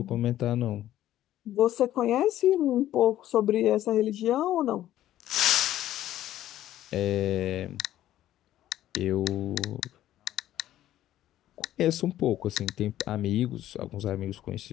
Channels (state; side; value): quieter; right; 13.1 dB